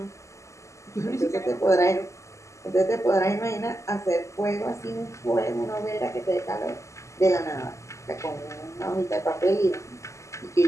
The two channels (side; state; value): right; late; 0.14 ms